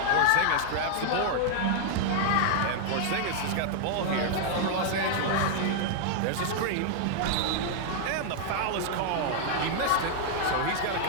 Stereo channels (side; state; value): both; different; correlation 0.00